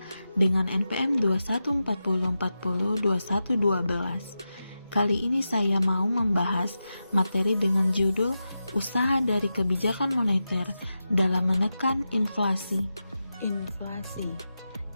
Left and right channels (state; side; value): inverted; both; correlation -0.91